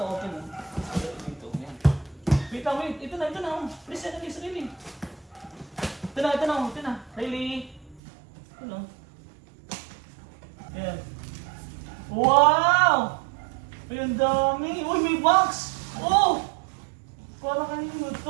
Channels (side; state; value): left; drops out; at 8.0 s